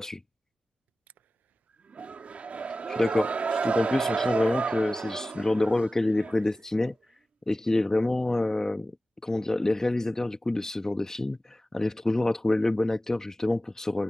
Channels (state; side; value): normal; both; correlation 0.95